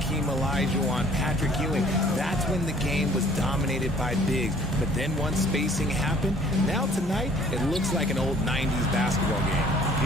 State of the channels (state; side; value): normal; both; correlation 0.55